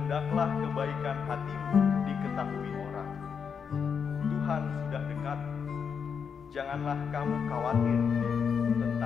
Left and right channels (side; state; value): right; quieter; 6.6 dB